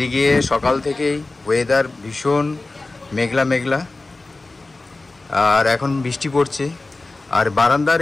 সকাল থেকেই ওয়েদার ভীষণ মেঘলা মেঘলা, আর এখন বৃষ্টি পড়ছে। আর বারান্দার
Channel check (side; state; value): right; quieter; 3.2 dB